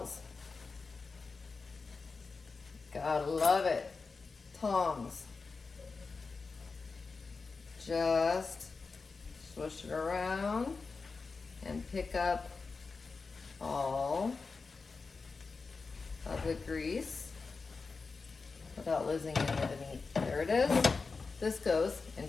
Gotta love it. Tongs. Just swish it around and pick up all of the grease without losing any of the meat. There it is. This goes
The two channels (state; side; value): quieter; right; 4.4 dB